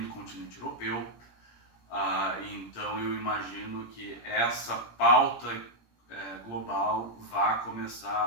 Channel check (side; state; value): right; late; 17 ms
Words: do continente europeu. Então eu imagino que essa pauta global vai